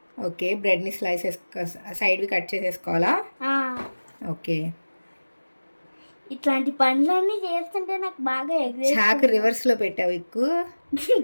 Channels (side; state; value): both; inverted; correlation -1.00